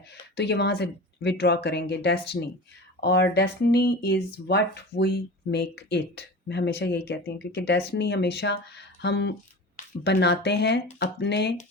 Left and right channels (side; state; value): both; normal; correlation 0.33